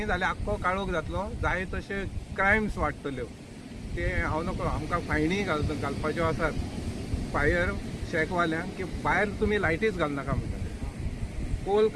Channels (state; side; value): identical; both; correlation 1.00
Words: जाल्यार आख्खो काळोख जातलो, जाय तशे क्रायम्स वाडटल्यो। ते हांव नकळो आमकां फायनी घालपाच्यो आसात फायर शेकवाल्यांक की भायर तुमी लायटीच घालनाका म्हणटा, पोल